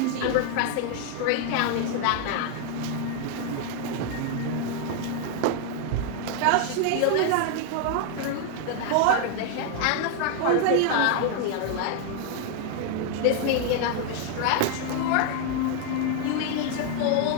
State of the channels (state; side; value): different; both; correlation 0.00